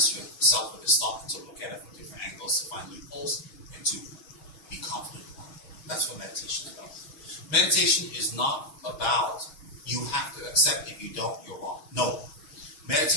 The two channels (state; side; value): late; right; 6.2 ms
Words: yourself with this thought, to look at it from different angles, to find loopholes, and to be confident about it. That's what meditation is about. Meditation is not about you have to accept if you don't, you're wrong. No.